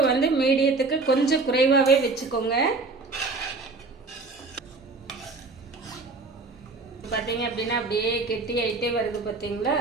வந்து மீடியத்துக்கு கொஞ்சம் குறைவாகவே வச்சுக்கோங்க. பார்த்தீங்க அப்படின்னா அப்படியே கெட்டி ஆகிட்டே வருது பார்த்தீங்களா.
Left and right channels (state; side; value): quieter; left; 3.8 dB